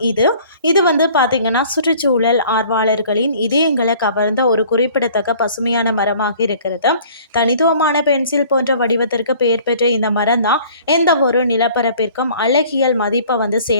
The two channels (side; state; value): both; inverted; correlation -0.52